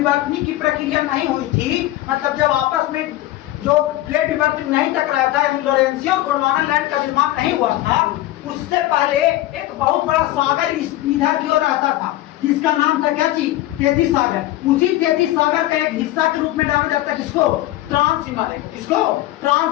की प्रक्रिया नहीं हुई थी, मतलब जब आपस में जो प्लेट विवर्तन नहीं टकराया था, लोरेंसी और गोंडवाना लैंड का निर्माण नहीं हुआ था, उससे पहले एक बहुत बड़ा सागर इधर की ओर आता था, जिसका नाम था क्या चीज? 33 सागर। उसी 33 सागर का एक हिस्सा के रूप में जाना जाता है किसको? ट्रांस हिमालय को। किसको?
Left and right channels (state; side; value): quieter; right; 15.7 dB